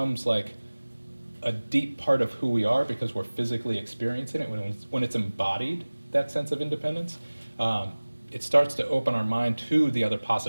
like a deep part of who we are because we're physically experiencing it, when it's embodied, that sense of independence, it starts to open our mind to the other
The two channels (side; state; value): both; inverted; correlation -1.00